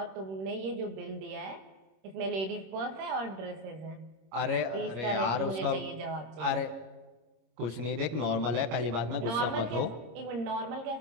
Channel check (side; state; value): left; late; 26 ms